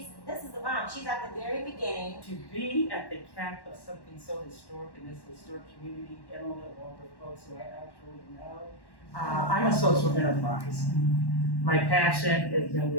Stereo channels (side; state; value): right; late; 1.1 ms